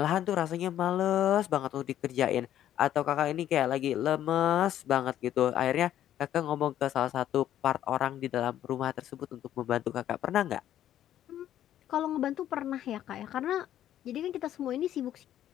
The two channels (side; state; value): right; quieter; 11.6 dB